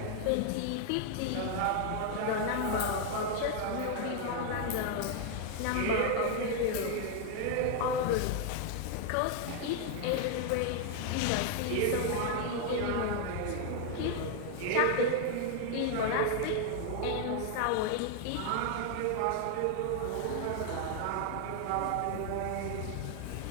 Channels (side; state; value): both; different; correlation 0.00